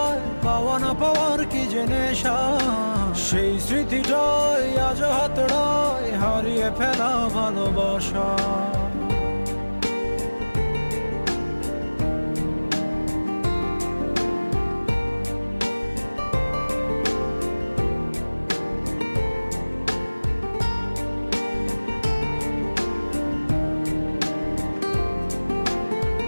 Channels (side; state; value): both; inverted; correlation -1.00